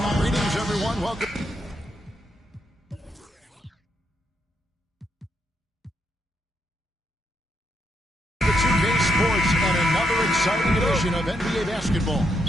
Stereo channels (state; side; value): normal; both; correlation 0.78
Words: Greetings, everyone. Welcome. The 2K Sports and another exciting edition of NBA basketball.